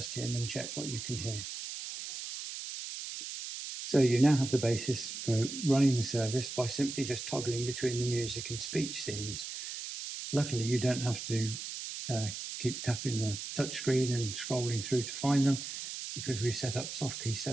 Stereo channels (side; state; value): right; noise; hiss, 7 dB below the sound